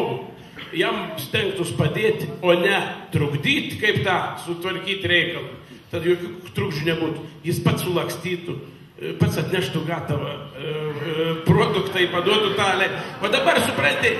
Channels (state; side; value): identical; both; correlation 1.00